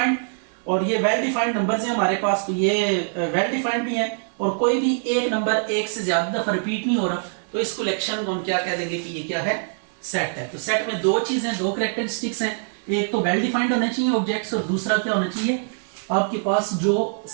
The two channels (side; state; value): left; silent; digital silence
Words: और ये वेल डिफाइंड नंबर्स हैं हमारे पास, तो ये वेल डिफाइंड भी है। और कोई भी एक नंबर एक से ज्यादा दफा रिपीट नहीं हो रहा, तो इस कलेक्शन को हम क्या कह देंगे कि ये क्या है, सेट है। तो सेट में दो चीजें, दो कैरेक्टरिस्टिक्स हैं, एक तो वेल डिफाइंड होने चाहिए ऑब्जेक्ट्स, और दूसरा क्या होना चाहिए, आपके पास जो